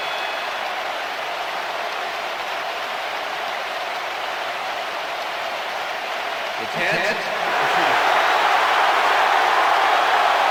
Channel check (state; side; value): identical; both; correlation 1.00